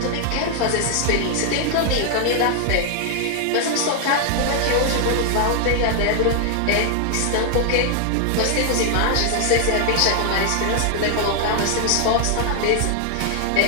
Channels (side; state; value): both; different; correlation 0.00